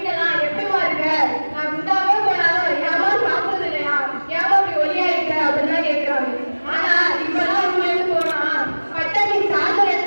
எப்படிமா இருக்க, நான் குண்டாவே போனாலும் ஏமா சாப்பிடுறது இல்லையா, ஏமா அப்படி ஒல்லியா இருக்க அப்படின்னு கேட்கிறாங்க. ஆனா இப்பெல்லாம் ஊர்ல இருந்து போனா பட்டணி சாதனை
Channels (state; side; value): inverted; both; correlation -1.00